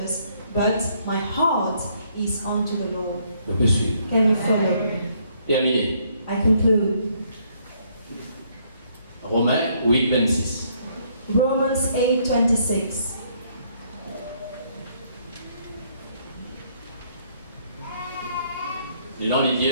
but my heart is onto the Lord. Je peux suivre. Can you follow? Terminé. I conclude. Romains 8, 26. Romans 8:26. Les gens lui disent,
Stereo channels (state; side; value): inverted; both; correlation -0.68